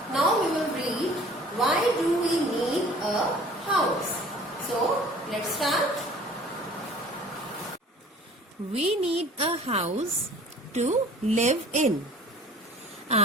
Now we will read, why do we need a house? So, let's start. We need a house to live in.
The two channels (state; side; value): normal; both; correlation 0.48